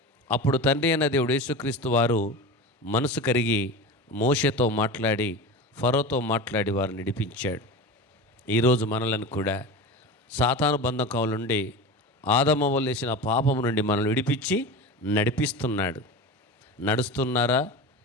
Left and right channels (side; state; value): both; normal; correlation 0.28